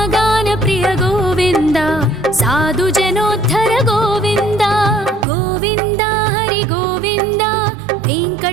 प्रिय गोविन्द साधु जनोद्धर गोविन्द गोविन्द हरि गोविन्द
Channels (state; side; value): drops out; left; at 5.2 s